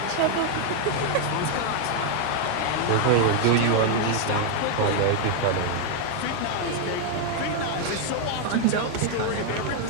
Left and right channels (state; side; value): different; both; correlation 0.00